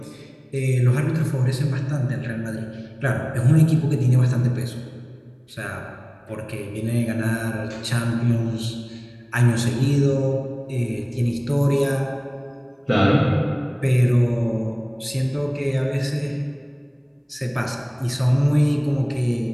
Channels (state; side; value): identical; both; correlation 1.00